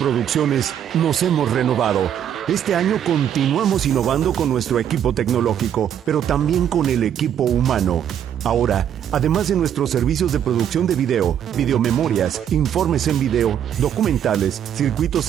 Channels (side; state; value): left; quieter; 9.5 dB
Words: nos hemos renovado. Este año continuamos innovando con nuestro equipo tecnológico, pero también con el equipo humano. Ahora, además de nuestros servicios de producción de video, videomemorias, informes en video, documentales, circuitos